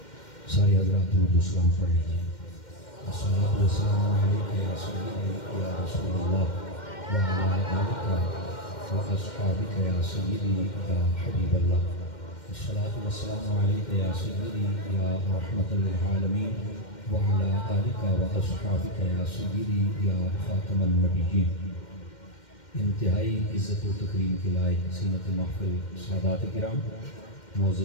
سارے حضرات درود و سلام پڑھ لیجیے. الصلاۃ والسلام علیک یا سیدی یا رسول اللہ وعلی آلک واصحابک یا سیدی یا حبیب اللہ. الصلاۃ والسلام علیک یا سیدی یا رحمت للعالمین وعلی آلک واصحابک یا سیدی یا خاتم النبیین. انتہائی عزت و تکریم کے لائق زینت محفل سادات کرام،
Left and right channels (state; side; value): late; right; 2.1 ms